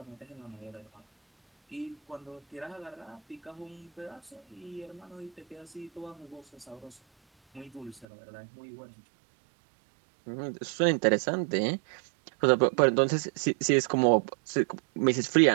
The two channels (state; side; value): drops out; left; at 8.1 s